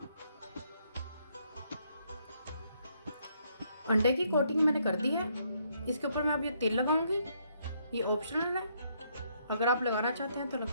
अंडे की कोटिंग मैंने कर दी है। इसके ऊपर मैं अब ये तेल लगाऊंगी। ये ऑप्शनल है, अगर आप लगाना चाहते हैं तो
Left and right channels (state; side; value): inverted; both; correlation -0.72